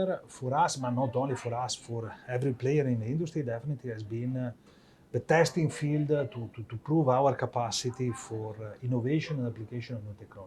for us, but not only for us, for every player in the industry, definitely has been the testing field to prove our capacity for innovation and application of new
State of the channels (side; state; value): both; identical; correlation 1.00